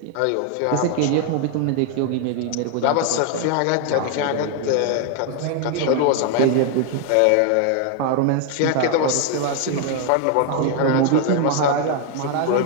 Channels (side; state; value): both; different; correlation 0.01